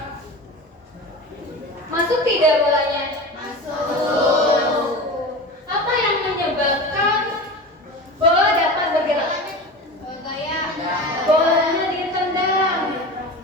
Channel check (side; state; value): both; normal; correlation 0.30